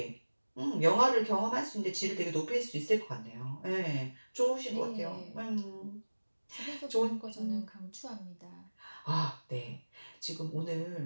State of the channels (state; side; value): inverted; both; correlation -1.00